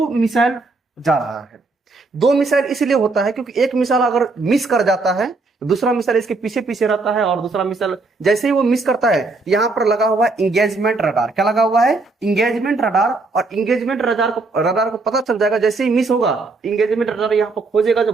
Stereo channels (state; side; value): quieter; left; 3.6 dB